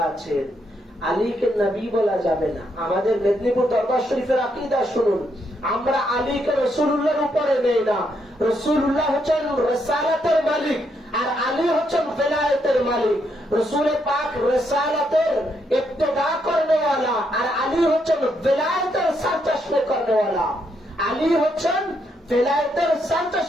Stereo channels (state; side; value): normal; both; correlation 0.77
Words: আছেন। আলীকে নবী বলা যাবে না। আমাদের মেদিনীপুর দরবার শরীফের আকীদা শুনুন, আমরা আলীকে রাসূলুল্লাহর উপরে নেই না। রাসূলুল্লাহ হচ্ছেন রিসালাতের মালিক, আর আলী হচ্ছেন বেলায়েতের মালিক। রাসূল পাক রিসালাতের ইবতিদা করনে वाला, আর আলী হচ্ছেন বেলায়েতের সরচশমে করনে वाला। আলী হচ্ছেন বেলায়েতের